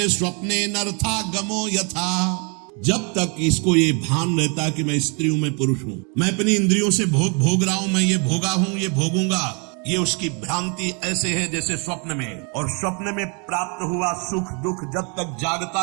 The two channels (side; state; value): left; quieter; 35.1 dB